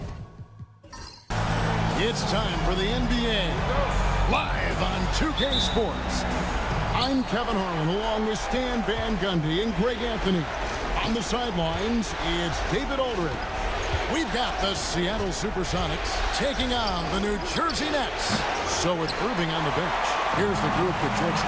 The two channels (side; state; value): both; identical; correlation 1.00